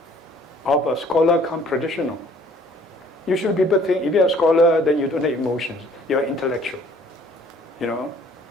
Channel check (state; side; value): normal; both; correlation 0.57